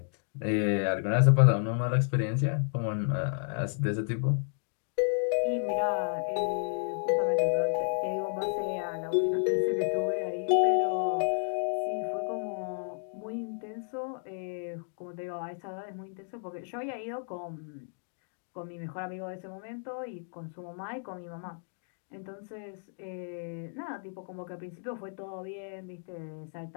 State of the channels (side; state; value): right; silent; digital silence